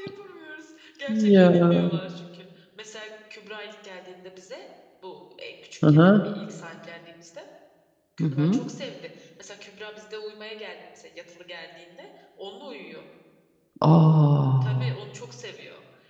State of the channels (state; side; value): identical; both; correlation 1.00